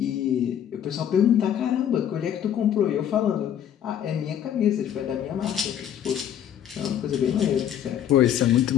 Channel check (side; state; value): right; quieter; 9.8 dB